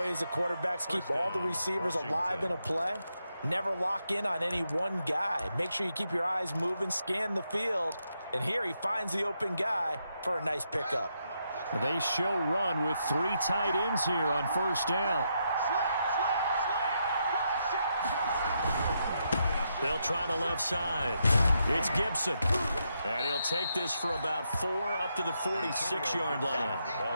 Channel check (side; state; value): both; inverted; correlation -0.81